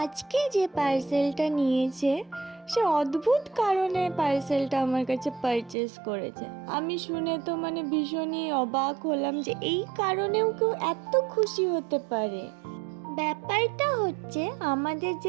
যে পার্সেলটা নিয়েছে সে অদ্ভুত কারণে পার্সেলটা আমার কাছে পারচেস করেছে। আমি শুনে তো ভীষণই অবাক হলাম যে এই কারণেও কেউ এত খুশি হতে পারে। ব্যাপারটা হচ্ছে, আমাদের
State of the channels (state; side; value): drops out; left; at 5.8 s